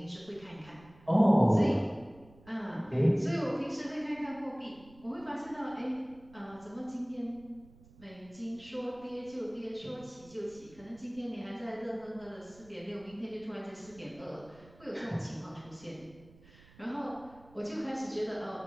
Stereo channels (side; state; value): right; noise; rumble, 23 dB below the sound